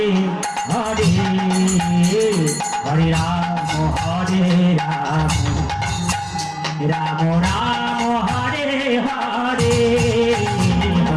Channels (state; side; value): identical; both; correlation 1.00